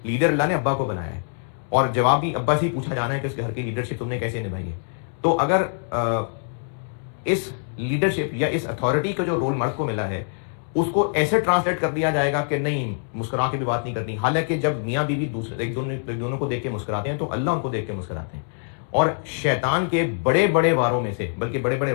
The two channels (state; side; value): silent; right; 63 dB below the other